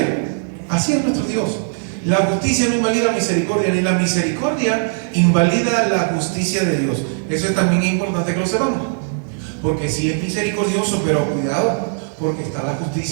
Así es nuestro Dios. La justicia no invalida la misericordia, ni la misericordia invalida la justicia de Dios. Eso es también importante que lo sepamos. Porque sí es misericordioso, pero cuidado, porque está la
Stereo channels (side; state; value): left; silent; digital silence